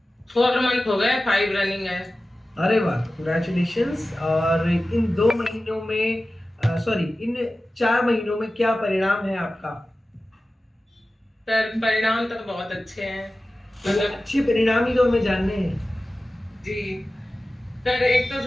4 मंथ हो गए, 5 रनिंग है। अरे वाह, कंग्रेचुलेशंस। और इन 2 महीनों में, सॉरी, इन 4 महीनों में क्या परिणाम है आपका? सर परिणाम तो बहुत अच्छे हैं। तो वो मतलब अच्छे परिणाम ही तो हमें जानने हैं। जी सर, एक तो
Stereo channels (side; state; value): both; normal; correlation 0.95